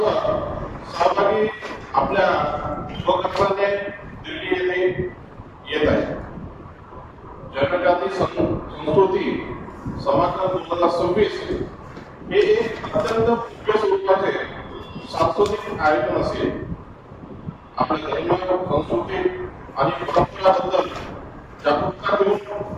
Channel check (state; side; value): identical; both; correlation 1.00